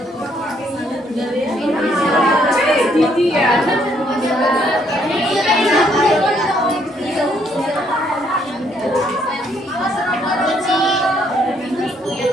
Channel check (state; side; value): normal; both; correlation 0.69